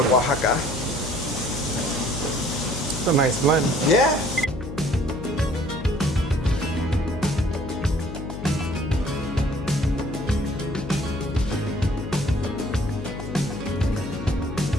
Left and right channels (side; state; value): left; noise; hum, 8 dB below the sound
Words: Oaxaca. It's a nice blend. Yeah.